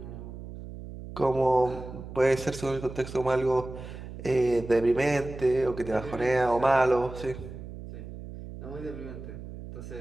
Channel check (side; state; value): right; noise; hum, 12 dB below the sound